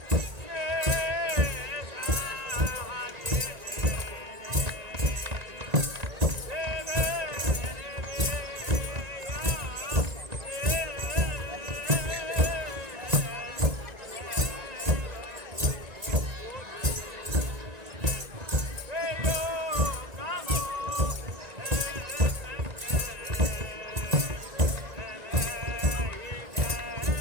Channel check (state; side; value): late; left; 1.9 ms